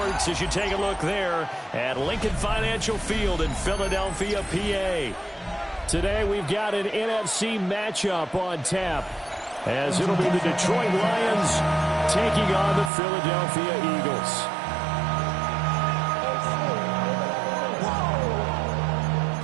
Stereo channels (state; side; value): drops out; left; at 12.9 s